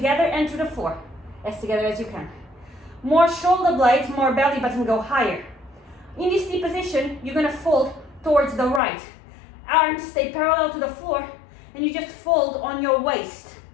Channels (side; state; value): right; drops out; at 8.8 s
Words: and to the floor. As together as you can. More shoulder blades, more belly button go higher. In this deep position, you're gonna fold towards the right. Arms stay parallel to the floor and you just fold on your waist.